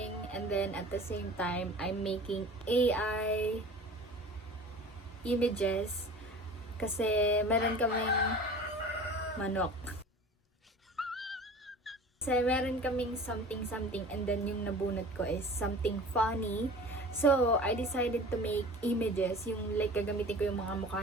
and then at the same time I'm making AI images kasi meron kaming manok. Kasi meron kaming something and then yung nabunot ko is something funny. So, I decided to make images, yung like gagamitin ko yung mga mukha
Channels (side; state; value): both; normal; correlation 0.41